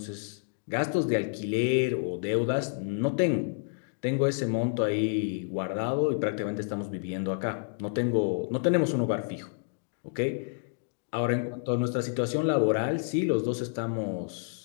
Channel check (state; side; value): silent; right; digital silence